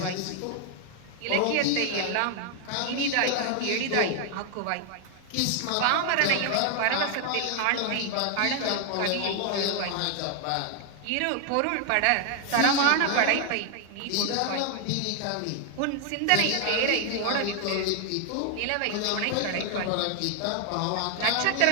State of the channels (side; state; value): both; different; correlation 0.00